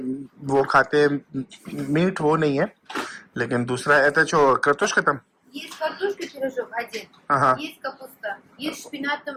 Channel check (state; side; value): identical; both; correlation 1.00